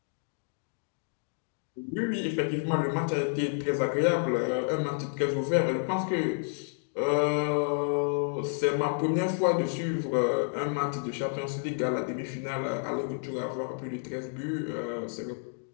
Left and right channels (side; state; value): right; silent; 58 dB below the other